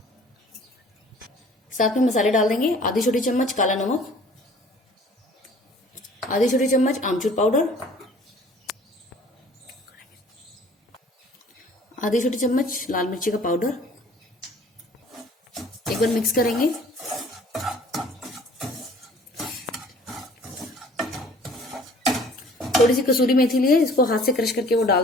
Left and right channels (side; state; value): both; normal; correlation 0.52